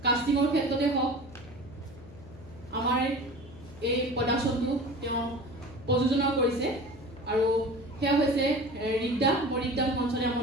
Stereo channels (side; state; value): left; noise; hum, 19 dB below the sound